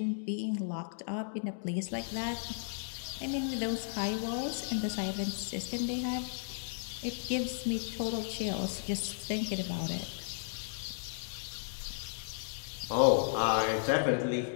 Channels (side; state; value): right; silent; digital silence